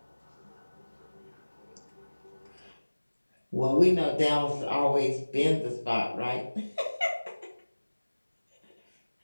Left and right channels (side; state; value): both; inverted; correlation -1.00